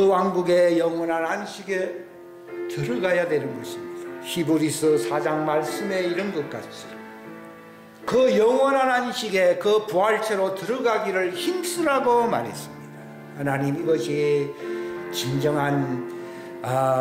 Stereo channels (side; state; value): both; identical; correlation 1.00